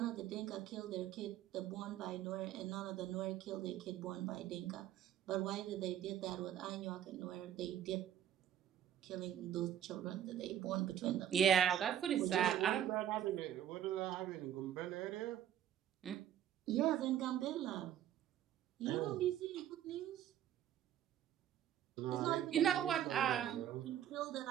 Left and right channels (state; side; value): quieter; left; 10.8 dB